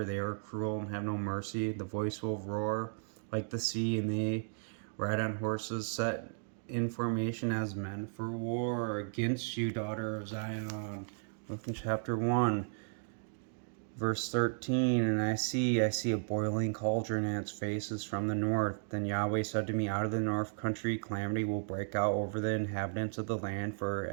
They are cruel and have no mercy. The voice will roar like the sea, and they ride on horses set in formation as men for war against you, daughter of Zion. Look in chapter 1. Verse 13, and I see a boiling cauldron, and its face is from the north. Then Yahweh said to me, out of the north country calamity will break out over the inhabitants of the land, for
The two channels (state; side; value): silent; left; digital silence